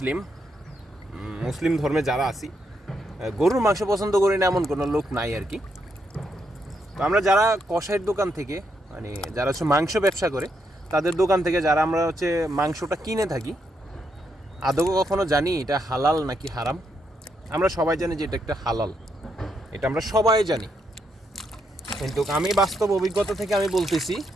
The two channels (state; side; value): normal; both; correlation 0.78